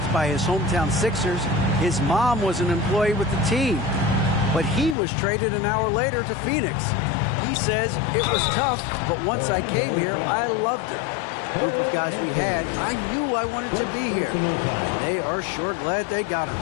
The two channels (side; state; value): right; drops out; at 5.0 s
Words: by his hometown Sixers, his mom was an employee with the team. But he was traded an hour later to Phoenix. He says, it was tough, but once I came here, I loved it. The group of guys we had, I knew I wanted to be here. And they are sure glad they got him,